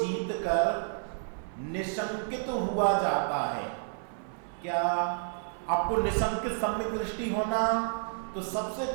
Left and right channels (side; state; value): left; silent; 57 dB below the other